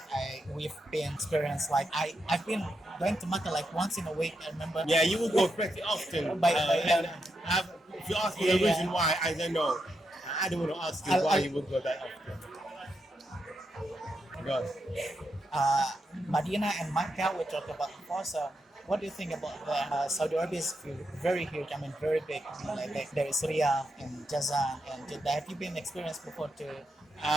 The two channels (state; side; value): normal; both; correlation 0.84